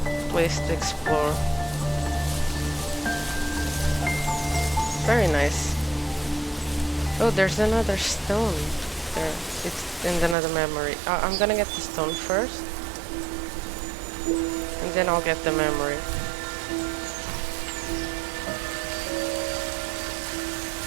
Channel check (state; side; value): drops out; left; at 10.4 s